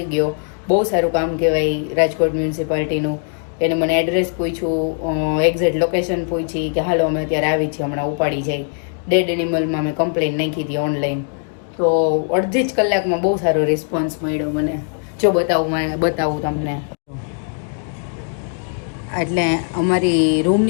ગયો. બહુ સારું કામ કહેવાય રાજકોટ મ્યુનિસિપાલિટીનું. એને મને એડ્રેસ પૂછ્યું, એક્ઝેક્ટ લોકેશન પૂછી કે હાલો અમે અત્યારે આવી છીએ, હમણાં ઉપાડી જાય. ડેડ એનિમલમાં મેં કમ્પ્લેન નાખી હતી ઓનલાઈન. તો અડધી જ કલાકમાં બહુ સારો રિસ્પોન્સ મળ્યો મને. જો બતાવું તમને. એટલે અમારી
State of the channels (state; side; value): silent; right; 55 dB below the other